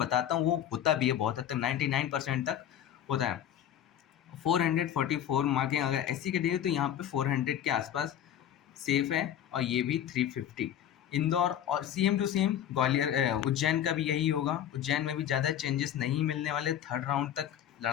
हूँ वो होता भी है बहुत हद तक, 99% तक होता है। 444 मार्किंग अगर एससी के दिए तो यहाँ पे 400 के आसपास सेफ है। और ये भी 350। इंदौर और same to same Gwalior, Ujjain का भी यही होगा। उज्जैन में भी ज़्यादा चेंजेस नहीं मिलने वाले, थर्ड राउंड तक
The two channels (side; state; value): right; quieter; 10.5 dB